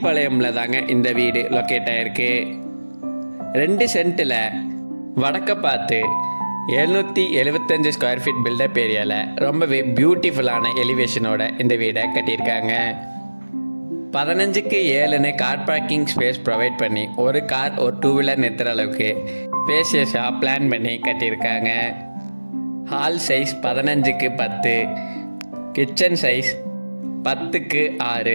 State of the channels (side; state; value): both; inverted; correlation -1.00